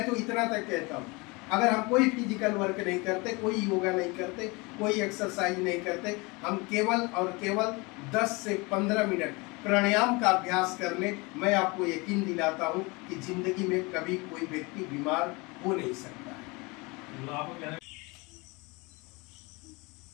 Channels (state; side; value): quieter; right; 26.3 dB